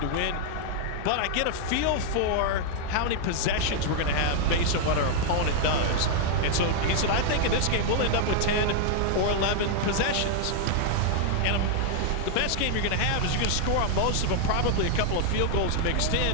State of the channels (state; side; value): different; both; correlation 0.00